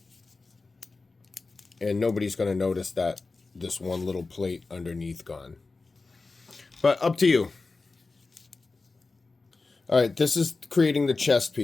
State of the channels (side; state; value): right; quieter; 3.8 dB